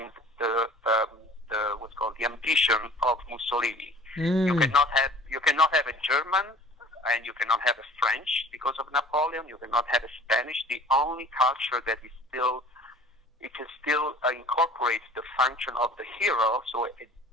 the what's called the ambition of Mussolini. You cannot have a German and you cannot have a French because of Napoleon. You cannot have a Spanish. The only culture that is still incorporates the function of the hero. So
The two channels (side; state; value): both; normal; correlation 0.47